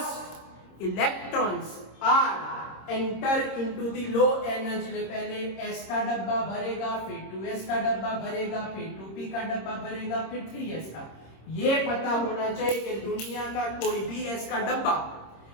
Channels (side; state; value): right; late; 26 ms